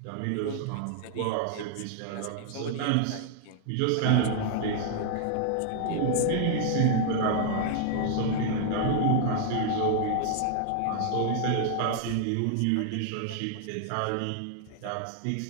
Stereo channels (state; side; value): different; both; correlation 0.00